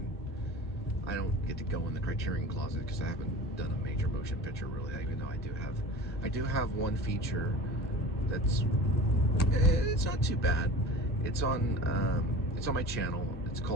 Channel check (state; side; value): normal; both; correlation 0.37